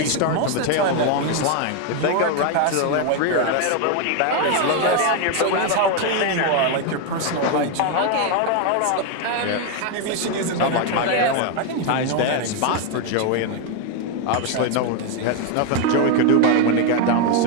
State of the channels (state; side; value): different; both; correlation 0.01